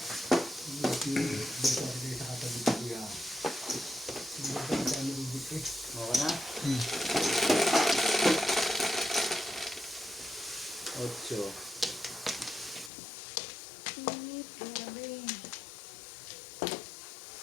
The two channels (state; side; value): drops out; right; at 12.9 s